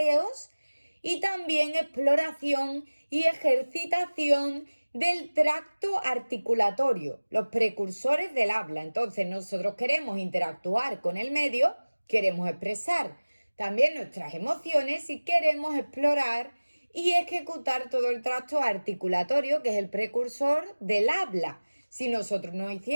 y también exploración y ejercitación del tracto articulatorio, los precursores del habla. Entonces nosotros queremos interactuar con el medio, queremos expresar también nuestras emociones y queremos explorar y ejecutar todo el tracto articulatorio, que es el precursor del habla. Si nosotros no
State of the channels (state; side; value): inverted; both; correlation -1.00